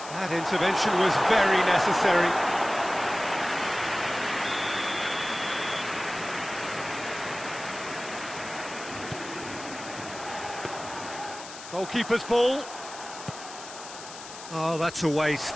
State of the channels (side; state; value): left; noise; hiss, 13 dB below the sound